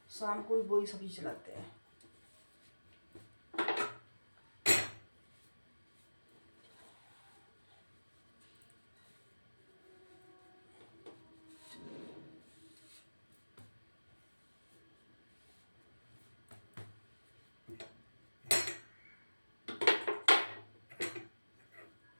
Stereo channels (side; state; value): both; inverted; correlation -1.00